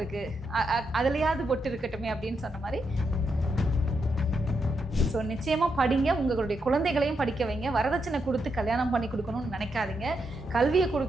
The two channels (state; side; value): normal; both; correlation 0.82